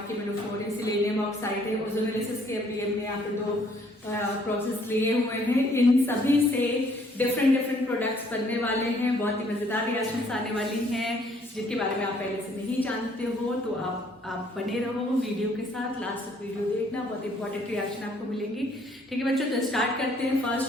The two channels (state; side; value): normal; both; correlation 0.63